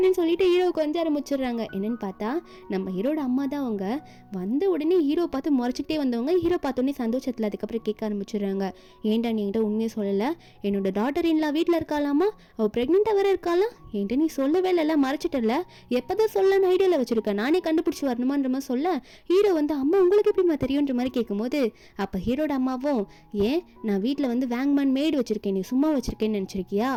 சொல்லிட்டு ஹீரோ கொஞ்சம் ஆரம்பிச்சிடுறாங்க. என்னன்னு பார்த்தா நம்ம ஹீரோட அம்மா தான். அவங்க வந்த உடனே ஹீரோ பார்த்து முறைச்சிக்கிட்டே வந்தவங்க ஹீரோ பார்த்தோன்னே சந்தோஷத்தில் அதுக்கப்புறம் கேட்க ஆரம்பிச்சிடுறாங்க, ஏன்டா நீ என்கிட்ட உண்மையை சொல்லலை, என்னோட டாட்டர் இன்லா வீட்டில் இருக்காளாமா, அவள் ப்ரெக்னெண்ட்டாக வேற இருக்காளா, என்கிட்ட நீ சொல்லவே இல்லை மறைச்சிட்டல, எப்போதான் சொல்லலான்னு ஐடியாவில் வச்சுருக்கேன், நானே கண்டுபிடிச்சி வரணுமான்ற மாதிரி சொல்ல ஹீரோ வந்து அம்மா உங்களுக்கு எப்படிமா தெரியுன்ற மாதிரி கேட்கும்போது அப்போ ஹீரோட அம்மாவும் ஏன் நான் வீட்டில் வந்து வேங்மேன் மேய்டு வச்சுருக்கேன், நீ சும்மா வச்சுருக்கேன்னு நினச்சிருக்கியா,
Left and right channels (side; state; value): both; identical; correlation 1.00